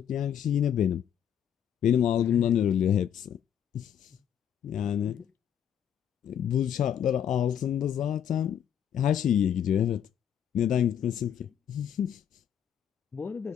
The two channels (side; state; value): right; quieter; 9.2 dB